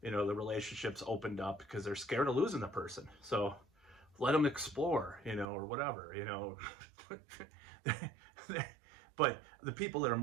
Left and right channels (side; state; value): left; drops out; at 5.5 s